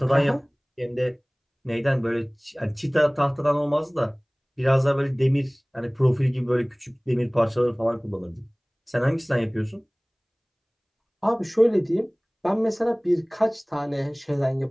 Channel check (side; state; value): both; identical; correlation 1.00